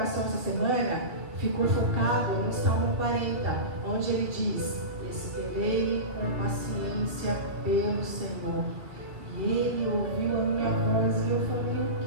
essa semana ficou focado no Salmo 40, onde ele diz: esperei com paciência pelo Senhor, e ele ouviu a minha voz. E eu falei: o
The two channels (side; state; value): left; late; 2.2 ms